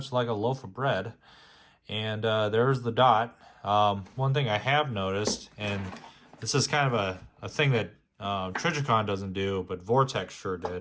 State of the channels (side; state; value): both; identical; correlation 1.00